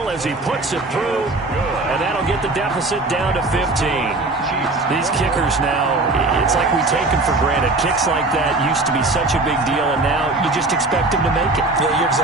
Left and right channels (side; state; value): left; quieter; 3.1 dB